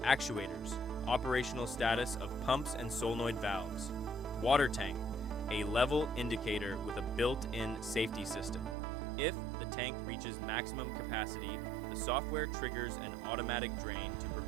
actuators, operational status of pumps and solenoid valves, water tank, a level indicator with a built-in safety system. If the tank reaches maximum capacity, the software triggers an automatic drain to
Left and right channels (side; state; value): left; drops out; at 8.8 s